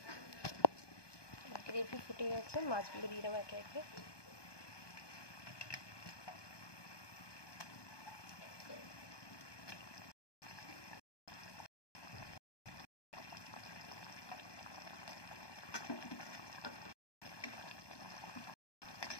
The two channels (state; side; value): late; right; 1.2 ms